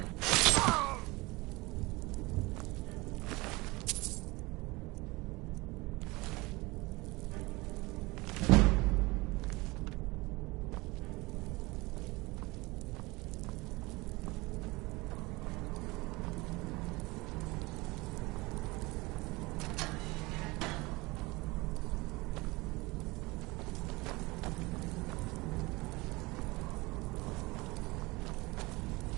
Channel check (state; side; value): quieter; left; 23.1 dB